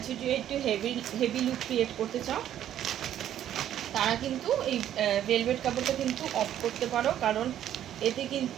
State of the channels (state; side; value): quieter; left; 11.1 dB